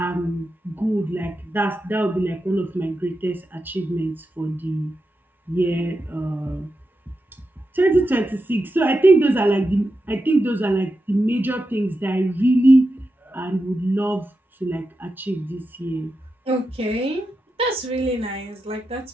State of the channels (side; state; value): both; normal; correlation 0.89